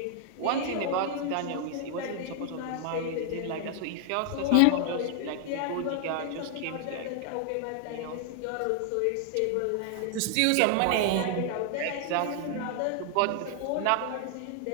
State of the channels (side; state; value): both; different; correlation 0.00